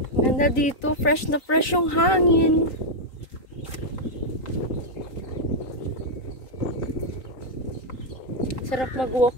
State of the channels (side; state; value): right; late; 3.9 ms